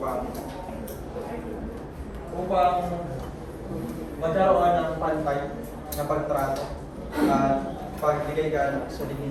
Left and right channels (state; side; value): identical; both; correlation 1.00